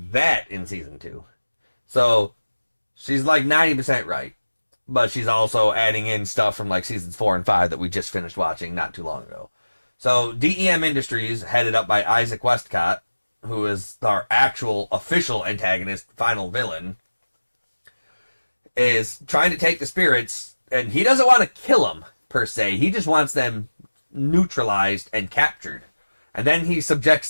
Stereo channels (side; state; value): both; inverted; correlation -1.00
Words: that in season 2. So she's like 90% right. But she's also adding in stuff from like seasons 4 and 5 that we just finished watching not too long ago. So DEM Industries, headed up by Isaac Westcott, who is our actual official antagonist, final villain, is trying to take the spirits, and he doesn't want to kill them per se. He just wants them neutralized and captured. And then he subjects